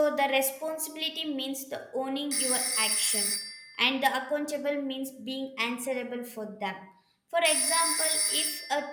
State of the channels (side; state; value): both; identical; correlation 1.00